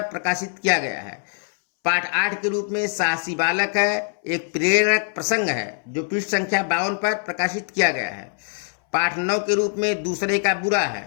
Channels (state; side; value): silent; right; 63 dB below the other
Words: प्रकाशित किया गया है। पाठ 8 के रूप में साहसी बालक है एक प्रेरक प्रसंग है, जो पृष्ठ संख्या 52 पर प्रकाशित किया गया है। पाठ 9 के रूप में दूसरे का बुरा